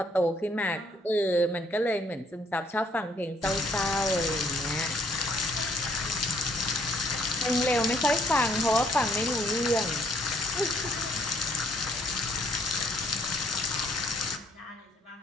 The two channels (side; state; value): both; normal; correlation 0.67